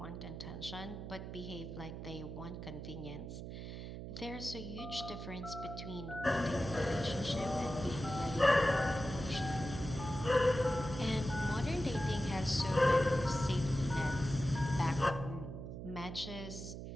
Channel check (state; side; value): noise; right; hum, 8 dB below the sound